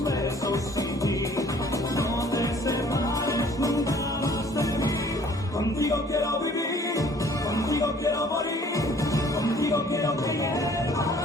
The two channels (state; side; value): normal; both; correlation 0.55